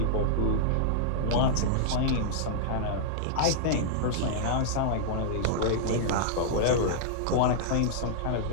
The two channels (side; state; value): both; different; correlation -0.02